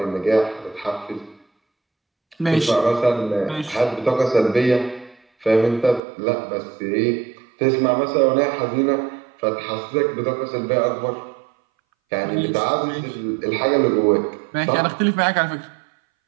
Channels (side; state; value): left; drops out; at 6.0 s